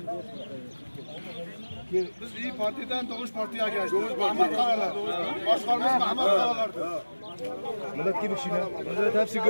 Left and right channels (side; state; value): both; inverted; correlation -1.00